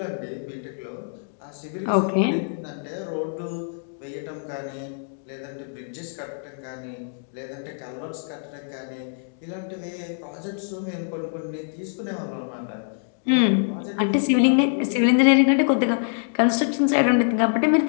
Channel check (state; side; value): silent; right; digital silence